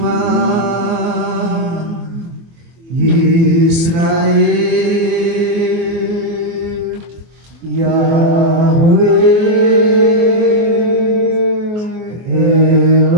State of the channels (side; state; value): left; late; 24 ms